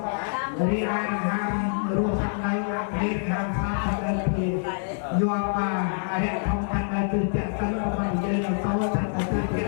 រីឯដង្ហើមរស់ខាងនៅអាមេរិកខាងសាខាងនៅពីយកមកអរិយធម្មខាងនៅគឺចាក់សិនរបស់យើងនៅតោចាក់ទៅចា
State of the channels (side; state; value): right; silent; 61 dB below the other